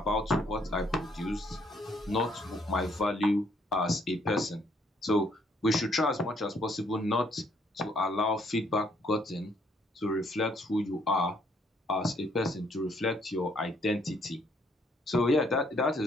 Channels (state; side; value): normal; both; correlation 0.68